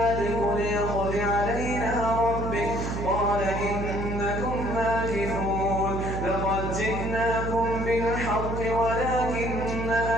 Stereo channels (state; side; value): noise; right; hum, 4 dB below the sound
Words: ليقض علينا ربك قال إنكم ماكثون لقد جئناكم بالحق ولكن